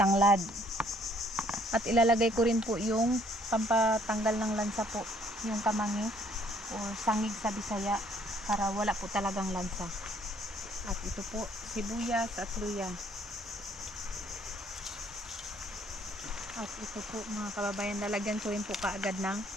At ilalagay ko rin po yung pampatanggal ng lansa po, yung kamangi o sangig sa Bisaya para wala po talagang lansa. At ito po, sibuyas at luya. At ito po mga kababayan, lalagyan ko rin po kaagad ng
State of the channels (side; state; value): both; normal; correlation 0.63